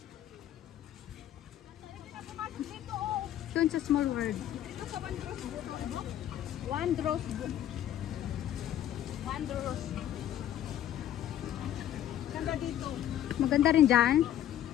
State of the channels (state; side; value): quieter; right; 11.7 dB